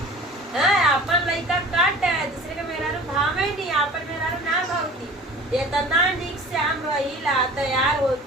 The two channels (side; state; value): both; normal; correlation 0.42